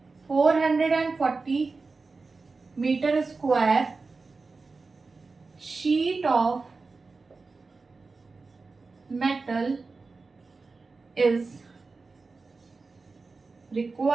440 metre square sheet of metal is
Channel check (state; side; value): quieter; left; 4.0 dB